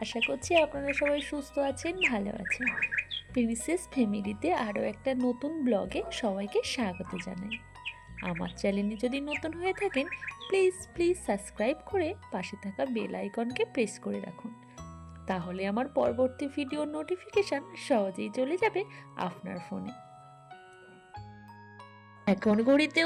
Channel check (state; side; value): identical; both; correlation 1.00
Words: আশা করছি আপনারা সবাই সুস্থ আছেন, ভালো আছেন। প্রিন্সেস ফ্যামিলিতে আরও একটা নতুন ব্লগে সবাইকে স্বাগত জানাই। আমার চ্যানেলে যদি নতুন হয়ে থাকেন, প্লিজ প্লিজ সাবস্ক্রাইব করে পাশে থাকা বেল আইকনকে প্রেস করে রাখুন। তাহলে আমার পরবর্তী ভিডিওর নোটিফিকেশান সহজেই চলে যাবে আপনার ফোনে। এখন ঘড়িতে